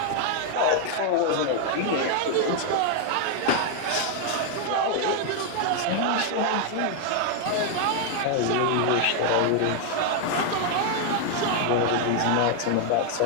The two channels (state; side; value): different; both; correlation 0.00